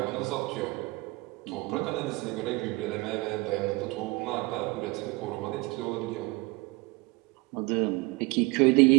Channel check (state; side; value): quieter; left; 24.4 dB